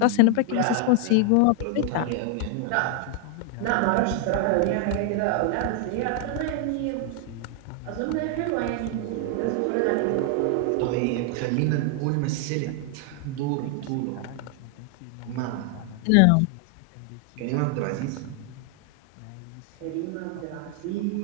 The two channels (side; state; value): both; different; correlation 0.00